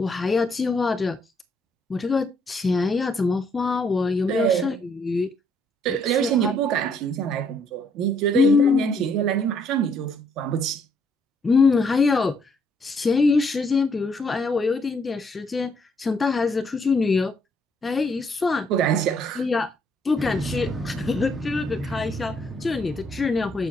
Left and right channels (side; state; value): both; normal; correlation 0.69